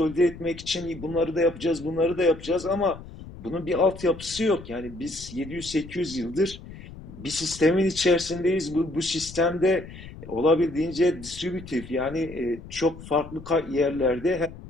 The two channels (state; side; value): noise; left; rumble, 15 dB below the sound